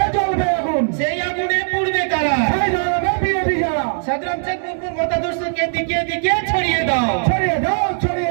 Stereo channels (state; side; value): silent; left; digital silence